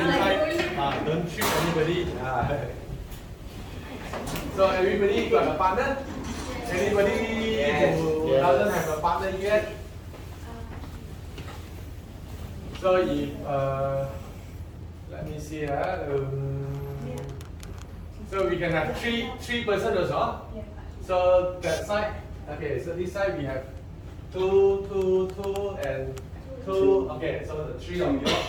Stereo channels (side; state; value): both; identical; correlation 1.00